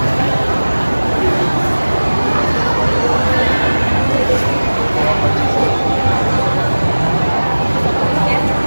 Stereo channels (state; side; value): inverted; both; correlation -1.00